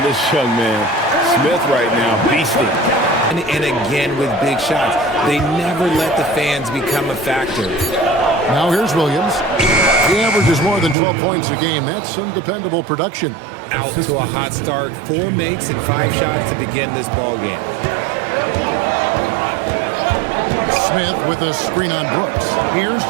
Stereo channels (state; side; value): drops out; left; at 11.0 s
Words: this young man. Smith right now, beasting. And again with big shots. They never let the fans become a factor. Now here's Williams. He averages more than 12 points a game. That's some dependable production. Out to a hot start. 4 makes and 5 shots to begin this ball game. Smith with a screen on Brooks. Here's